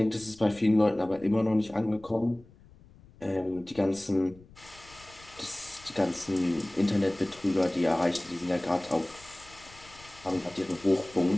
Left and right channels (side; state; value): left; noise; rumble, 24 dB below the sound